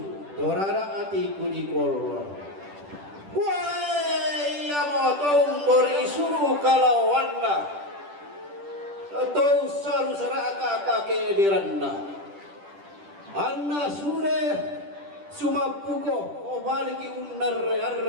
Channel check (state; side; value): late; left; 10 ms